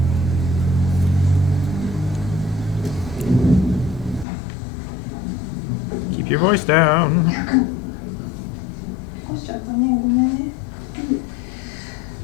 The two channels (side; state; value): right; drops out; at 4.2 s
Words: Keep your voice down. おっしゃったね、ごめんね。